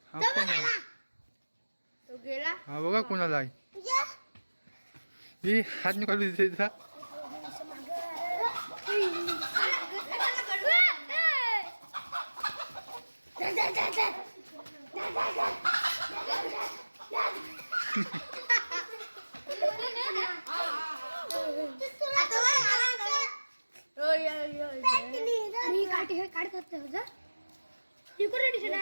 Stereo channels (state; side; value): inverted; both; correlation -1.00